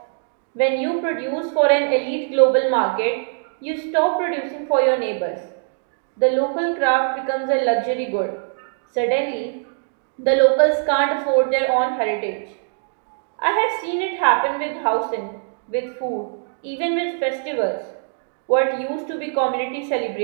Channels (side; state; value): left; silent; digital silence